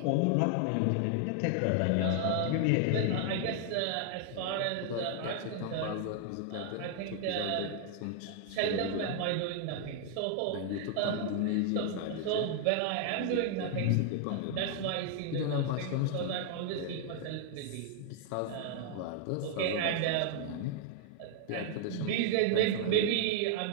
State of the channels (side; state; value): both; different; correlation 0.00